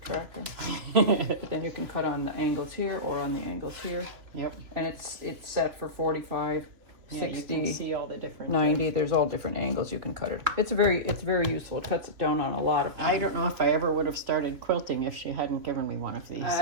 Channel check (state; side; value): late; left; 3.2 ms